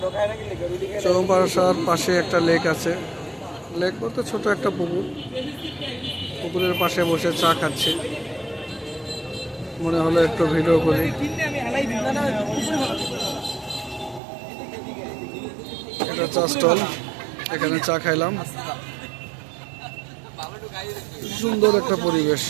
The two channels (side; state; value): left; drops out; at 14.2 s